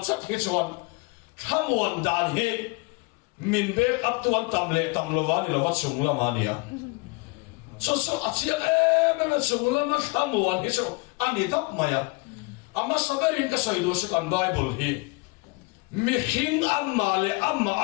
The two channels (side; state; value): right; quieter; 27.1 dB